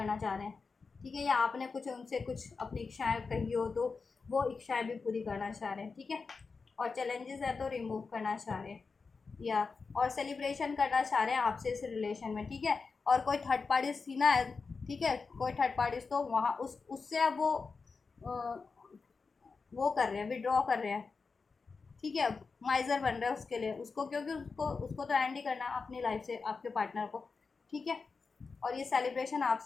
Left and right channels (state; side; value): quieter; right; 4.7 dB